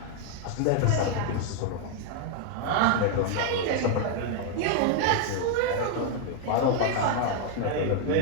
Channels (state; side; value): different; both; correlation 0.00